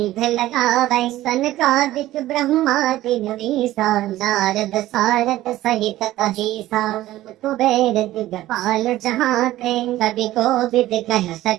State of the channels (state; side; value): quieter; left; 15.3 dB